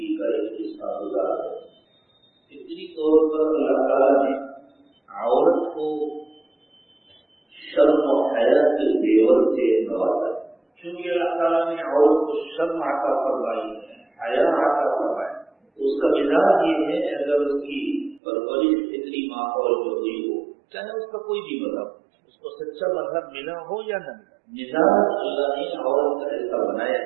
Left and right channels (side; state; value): left; drops out; at 18.2 s